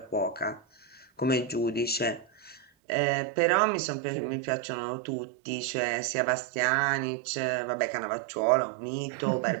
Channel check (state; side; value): drops out; left; at 2.7 s